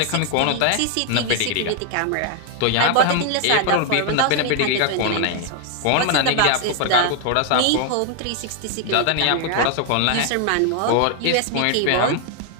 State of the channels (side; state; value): both; different; correlation 0.00